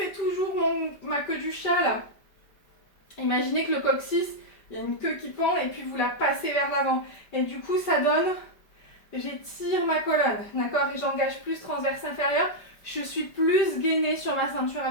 toujours ma queue du chat là. Imaginez que le coccyx, il y a une queue qui pend et puis vous la passez vers l'avant. Et du coup, ça donne, j'étire ma colonne, d'accord? Et j'engage plus transverse inférieur. Je suis plus gainée sur ma ceinture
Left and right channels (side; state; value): right; late; 5.2 ms